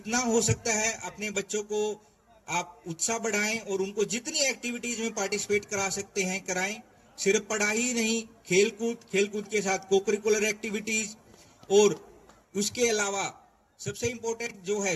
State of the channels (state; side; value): identical; both; correlation 1.00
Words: हो सकता है अपने बच्चों को आप उत्साह बढ़ाएं और उनको जितनी एक्टिविटीज में पार्टिसिपेट करा सकते हैं कराएं। सिर्फ पढ़ाई ही नहीं, खेलकूद के साथ कोकरिकुलर एक्टिविटीज, और उसके अलावा सबसे इंपॉर्टेंट जो